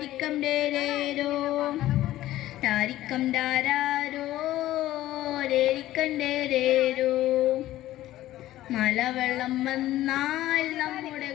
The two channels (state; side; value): quieter; right; 14.7 dB